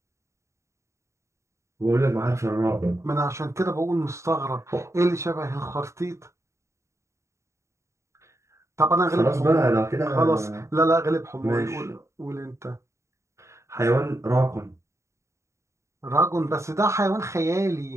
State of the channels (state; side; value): late; left; 0.14 ms